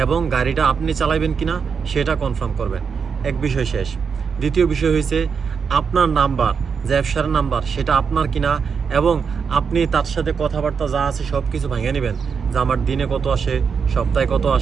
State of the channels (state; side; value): quieter; left; 6.1 dB